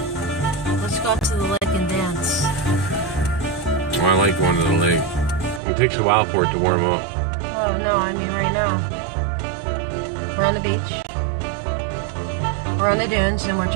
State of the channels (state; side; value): drops out; left; at 5.6 s